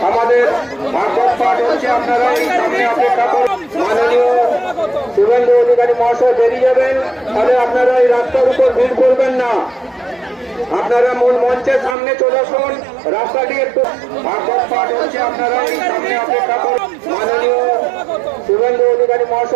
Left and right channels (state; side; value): drops out; left; at 12.0 s